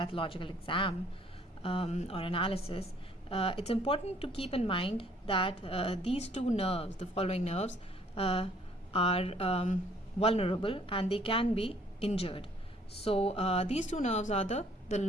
exam or analysis, it's important to keep in mind that these two nerves, the following nerves, are vulnerable and they can be injured. So these two nerves are the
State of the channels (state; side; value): normal; both; correlation 0.61